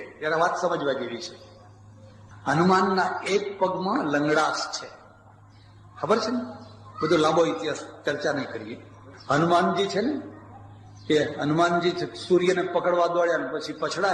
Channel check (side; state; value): both; identical; correlation 1.00